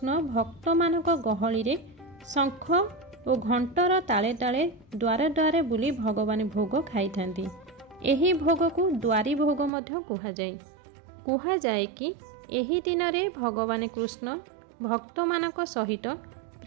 भक्त मानक गहली रे शंख और घंटर ताले ताले द्वारे द्वारे बुली भगवान भोग खाई थांती। एही भोग को द्वारी भोग मध्य कुहा जाए कि एही दिन रे भगवान कृष्ण भक्त मानक सहित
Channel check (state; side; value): drops out; left; at 9.7 s